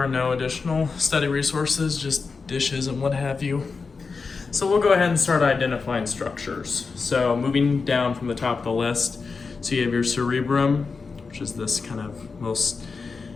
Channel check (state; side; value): quieter; right; 4.7 dB